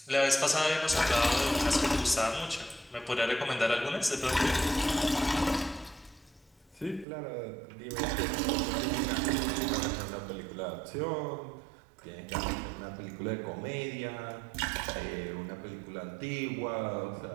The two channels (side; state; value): left; drops out; at 7.1 s